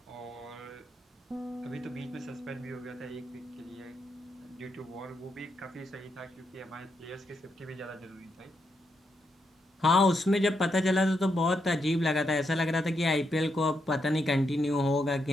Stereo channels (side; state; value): both; normal; correlation 0.81